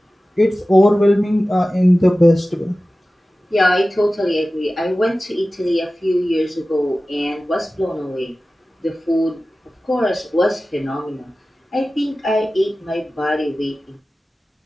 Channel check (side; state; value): both; normal; correlation 0.96